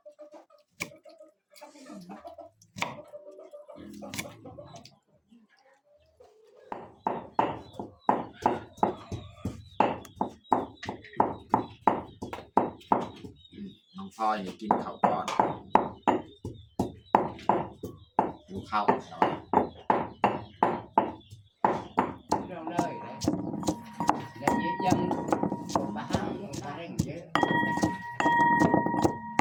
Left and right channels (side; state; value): both; identical; correlation 1.00